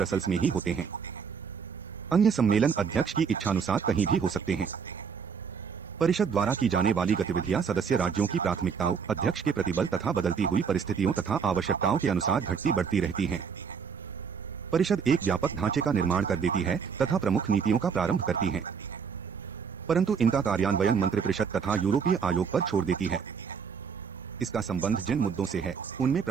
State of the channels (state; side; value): quieter; left; 6.3 dB